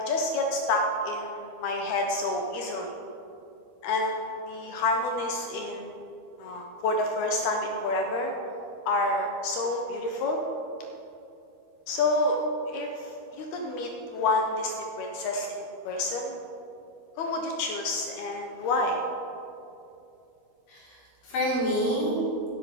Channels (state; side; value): late; right; 13 ms